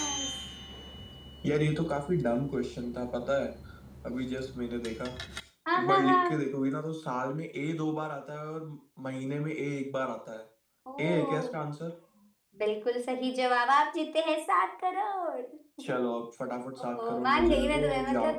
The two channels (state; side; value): identical; both; correlation 1.00